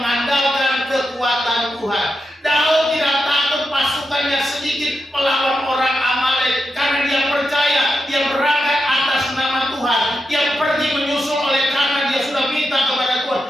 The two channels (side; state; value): both; normal; correlation 0.87